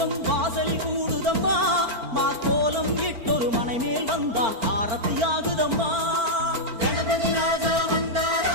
வாசலில் கூடுதம்மா. மாக்கோலம் இட்டொரு மனை மேல் வந்தான் ஆரத்தியாகுதம்மா. கணபதி ராஜா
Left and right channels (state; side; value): late; left; 4.5 ms